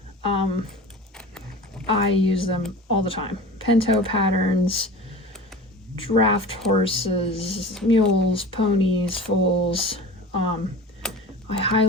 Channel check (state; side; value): normal; both; correlation 0.36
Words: I use them all the time. Pinto patterns, draft horses, mules, ponies, foals. I